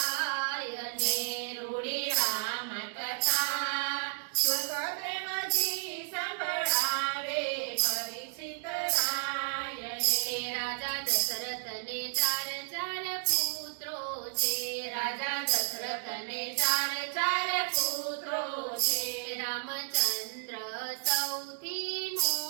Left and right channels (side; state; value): left; silent; digital silence